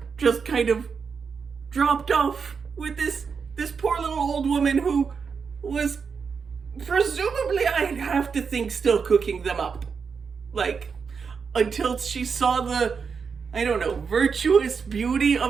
just kind of dropped off with this poor little old woman who was presumably, I'd have to think, still cooking them up. Like, until she saw the, I don't know, virtuous beauty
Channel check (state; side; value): quieter; left; 5.7 dB